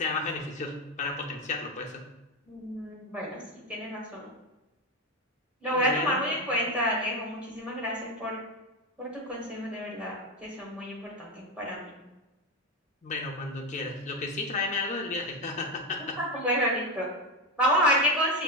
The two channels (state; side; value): normal; both; correlation 0.13